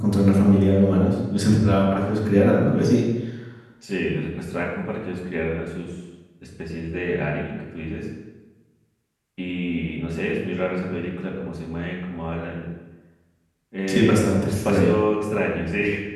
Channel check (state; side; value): identical; both; correlation 1.00